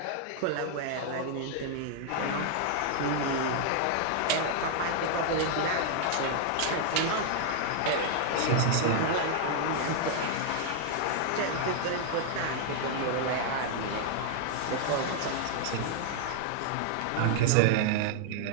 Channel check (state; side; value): different; both; correlation -0.01